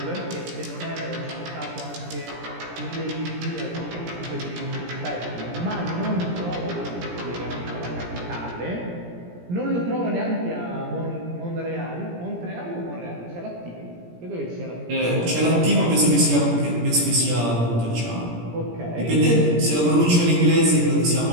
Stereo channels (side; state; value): left; late; 17 ms